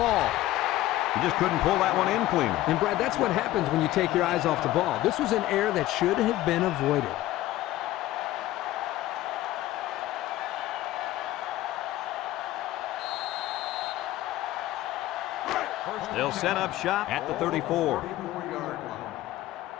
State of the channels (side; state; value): right; quieter; 15.4 dB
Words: He just couldn't pull that one in clean. And, Brad, that's what happens when you take your eyes off the ball. This was an error that should have been avoided. They'll set up shop at the 34.